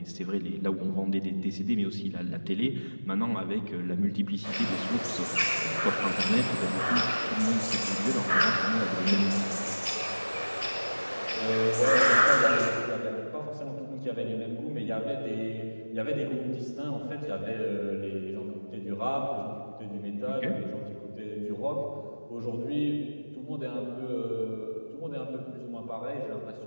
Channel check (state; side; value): inverted; both; correlation -1.00